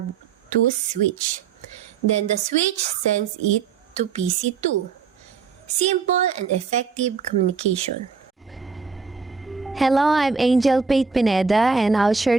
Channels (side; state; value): left; quieter; 5.5 dB